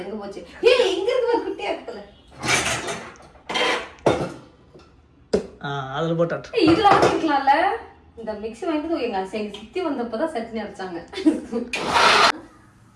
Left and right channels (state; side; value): identical; both; correlation 1.00